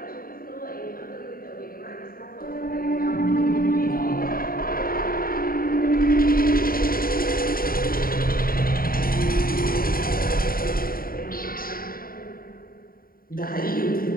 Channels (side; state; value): right; late; 0.42 ms